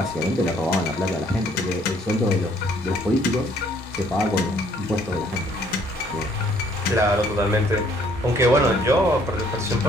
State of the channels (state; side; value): normal; both; correlation 0.63